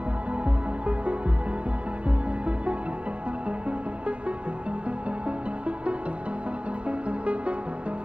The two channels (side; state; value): left; late; 0.060 ms